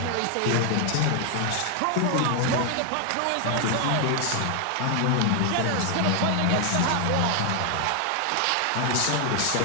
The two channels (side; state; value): both; different; correlation 0.00